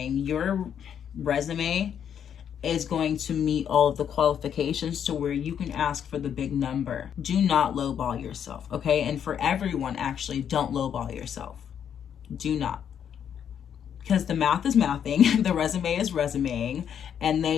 Your resume is going to meet all of the qualifications to where you can ask for the big number. Do not lowball yourself, okay? And for everyone, actually, don't lowball yourself. Do not. Because the math is mathing, the resume is resumeing, and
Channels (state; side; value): quieter; right; 8.6 dB